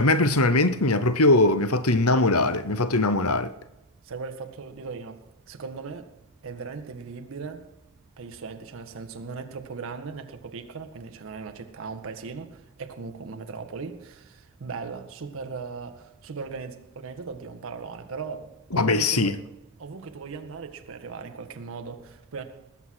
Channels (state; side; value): normal; both; correlation -0.01